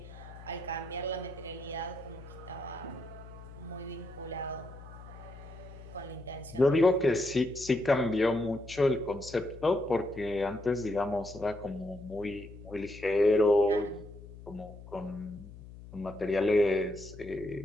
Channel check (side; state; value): left; noise; hum, 16 dB below the sound